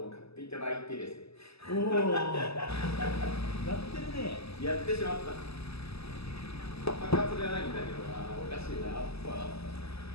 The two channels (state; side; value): late; right; 0.78 ms